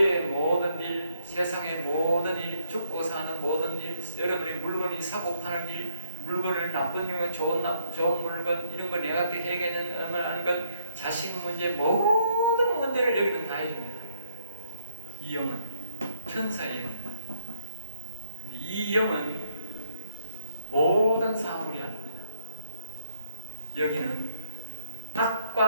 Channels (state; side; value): inverted; both; correlation -0.72